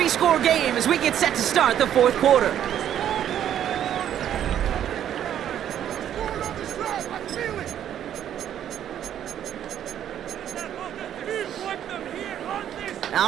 game as we get set to start the 4th quarter.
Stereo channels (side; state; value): left; quieter; 10.3 dB